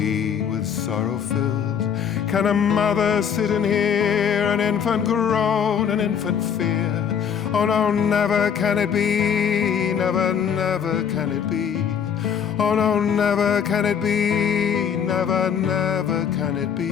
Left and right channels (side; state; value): right; quieter; 7.7 dB